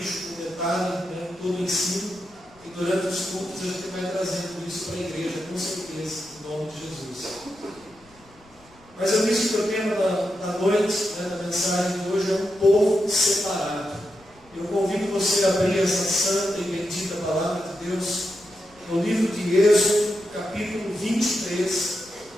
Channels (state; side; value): noise; left; rumble, 28 dB below the sound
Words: um detalhe, todo o ensino, e durante os cultos a gente vai trazendo isso para a igreja, com certeza, em nome de Jesus. Mas eu disse que o tema da noite, da mensagem de hoje, é um povo separado. Eu convido você a abrir essa santa e bendita palavra de Deus no livro de Êxodo, capítulo 23.